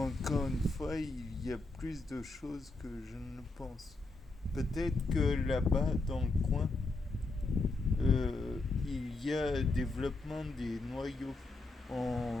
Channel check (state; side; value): quieter; right; 3.3 dB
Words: une fois, il y a plus de choses que je ne le pense. Peut-être que là-bas, dans le coin, il y a développement des noyaux.